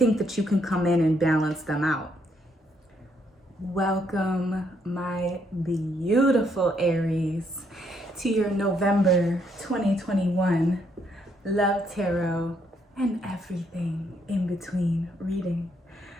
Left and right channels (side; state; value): both; normal; correlation 0.73